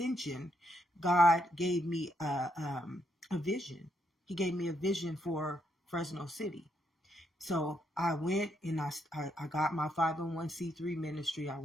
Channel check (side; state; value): both; normal; correlation 0.77